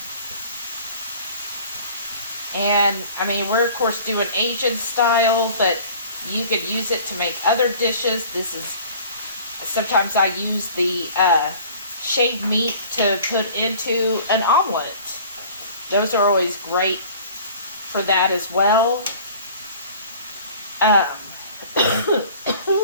And I mean, we're of course doing Asian style, but you could use it to make other dishes. Sometimes I use the shaved meat to put into an omelet. Those are always great for that as well.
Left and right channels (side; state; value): both; inverted; correlation -0.47